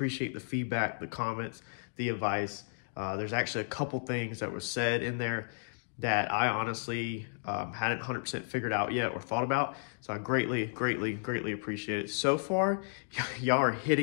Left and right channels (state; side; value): silent; right; digital silence